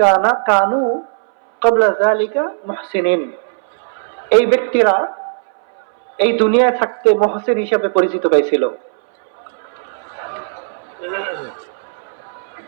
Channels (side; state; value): left; silent; 63 dB below the other